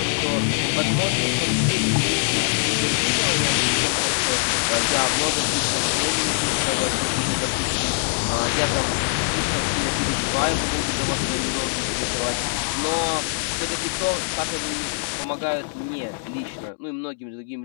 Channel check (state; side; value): silent; right; digital silence